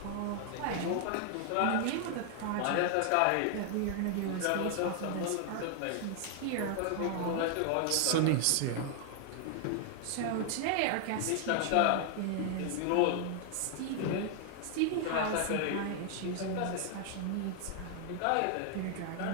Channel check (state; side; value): different; both; correlation 0.00